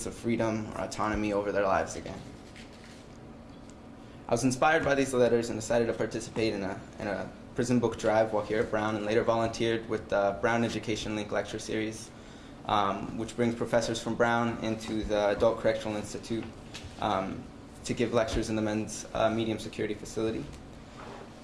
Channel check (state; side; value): identical; both; correlation 1.00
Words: of freedom or autonomy over their lives again. I was inspired by these letters and decided to participate in a prison book drive while here at Brown, and later volunteered with the Brown Education Link lecture series, which brings professors from Brown into the Adult Correctional Institute to give lectures in the men's medium security facility.